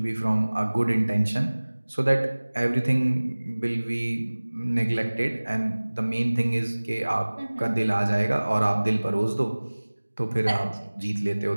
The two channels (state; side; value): inverted; both; correlation -1.00